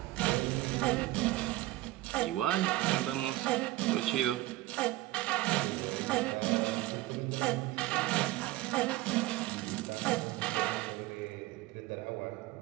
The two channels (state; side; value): quieter; left; 17.7 dB